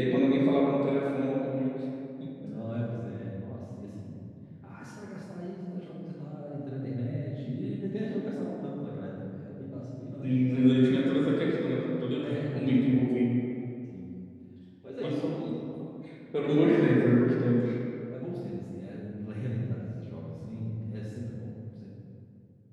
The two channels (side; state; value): both; identical; correlation 1.00